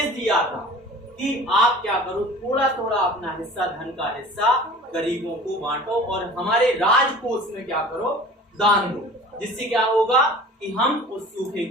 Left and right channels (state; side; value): normal; both; correlation 0.43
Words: दिया था कि आप क्या करो, थोड़ा थोड़ा अपना हिस्सा, धन का हिस्सा गरीबों को बांटो और हमारे राजकोष में क्या करो? दान दो, जिससे क्या होगा कि हम उस सूखे